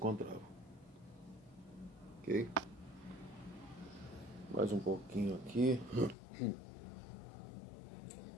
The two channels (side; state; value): right; drops out; at 6.2 s